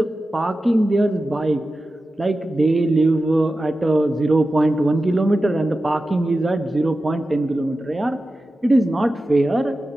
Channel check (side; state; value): both; normal; correlation 0.93